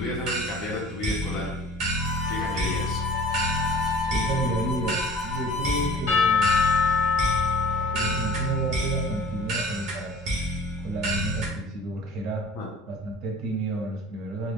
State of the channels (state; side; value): normal; both; correlation 0.45